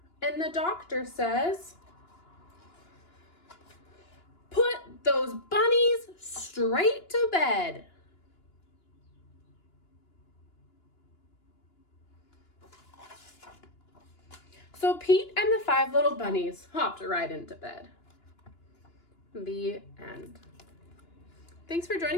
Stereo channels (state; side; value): late; right; 2.9 ms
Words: and the doctor says, "Put those bunnies straight to bed." So Pete and the 5 little bunnies hopped right into bed. The end. Thanks for